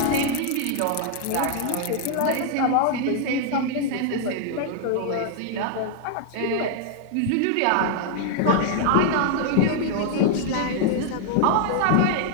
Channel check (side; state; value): both; different; correlation 0.00